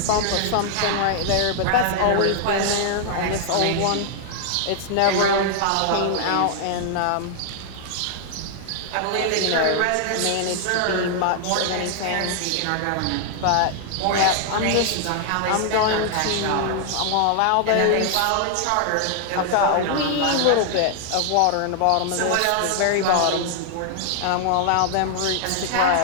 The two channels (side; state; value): both; different; correlation 0.00